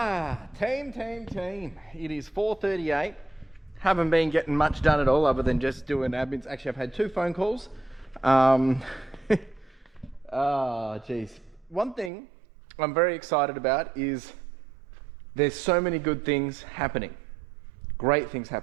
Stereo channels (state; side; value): drops out; left; at 12.1 s